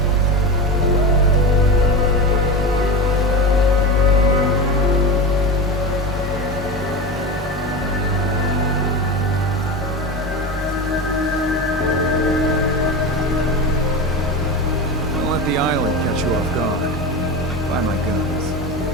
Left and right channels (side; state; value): both; normal; correlation 0.23